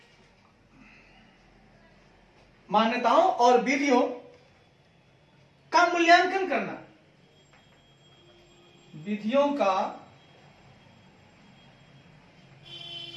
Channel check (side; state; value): both; identical; correlation 1.00